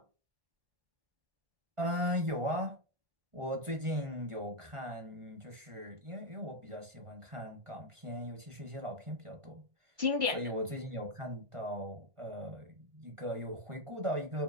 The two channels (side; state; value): left; late; 1.4 ms